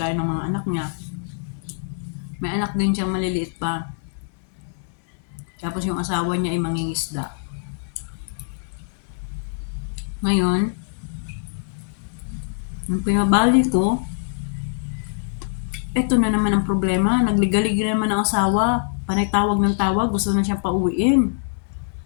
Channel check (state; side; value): silent; right; digital silence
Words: ng mga anak niya. May anak din siyang maliliit pa. Tapos yung asawa niya ay mangingisda. Ngayon, yung pinabali ko, eto na naman ang problema. Nagligalig naman ang asawa. Panay tawag ng tawag, gusto na siyang pauwiin.